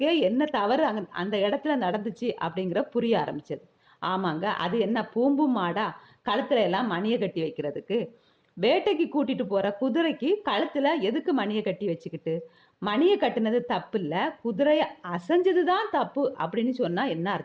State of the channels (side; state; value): both; identical; correlation 1.00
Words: என்ன தவறு அந்த இடத்துல நடந்துச்சு அப்படிங்கிற புரிய ஆரம்பிச்சது. ஆமாங்க, அது என்ன பூம்பு மாடா கழுத்துல எல்லாம் மணியை கட்டி வைக்கிறதுக்கு? வேட்டைக்கு கூட்டிட்டு போற குதிரைக்கு கழுத்துல எதுக்கு மணியை கட்டி வச்சுக்கிட்டு? மணியை கட்டினது தப்பு இல்ல, குதிரைய அசைஞ்சதுதான் தப்பு அப்படின்னு சொன்னா என்ன